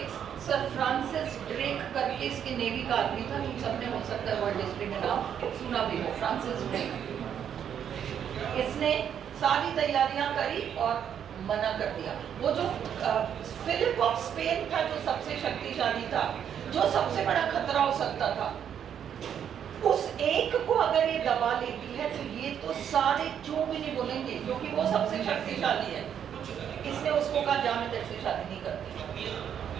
सर फ्रांसिस ड्रेक करके इसके नेवी का आदमी था, तुम सबने हो सकता है वर्ल्ड हिस्ट्री में नाम सुना भी हो, फ्रांसिस ड्रेक। इसने सारी तैयारियां करी और मना कर दिया। वो जो फिलिप ऑफ स्पेन था, जो सबसे शक्तिशाली था, जो सबसे बड़ा खतरा हो सकता था, उस एक को अगर ये दबा लेती है तो ये तो सारे क्यों भी नहीं बोलेंगे, क्योंकि वो सबसे शक्तिशाली है। इसने उसको कहा जा मैं तेरे से शादी नहीं करती।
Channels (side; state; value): left; quieter; 8.8 dB